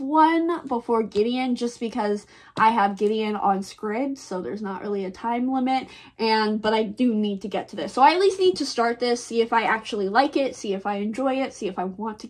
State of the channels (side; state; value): both; identical; correlation 1.00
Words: before Gideon, just because I have Gideon on Scribd, so there's not really a time limit, but I do need to get to this. So I at least need to start this, see if I actually like it, see if I enjoy it, see if I want to